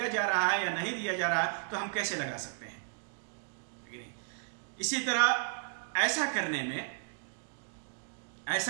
جا رہا ہے یا نہیں دیا جا رہا ہے تو ہم کیسے لگا سکتے ہیں؟ اسی طرح ایسا کرنے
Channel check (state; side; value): silent; left; digital silence